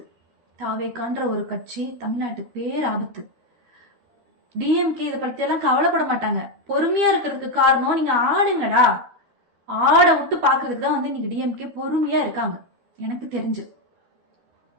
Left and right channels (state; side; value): late; left; 12 ms